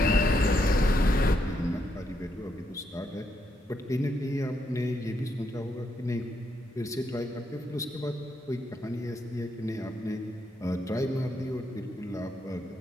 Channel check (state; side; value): normal; both; correlation 0.79